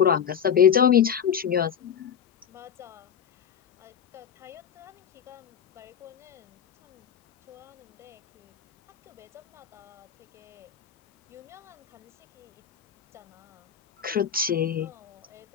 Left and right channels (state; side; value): quieter; right; 8.2 dB